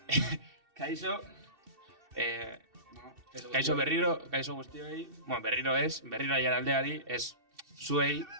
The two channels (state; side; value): late; left; 2.7 ms